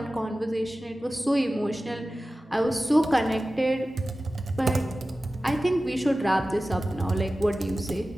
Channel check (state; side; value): normal; both; correlation 0.96